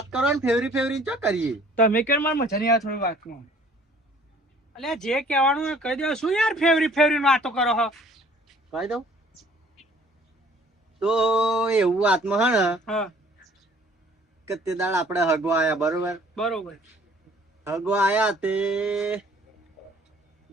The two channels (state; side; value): normal; both; correlation 0.54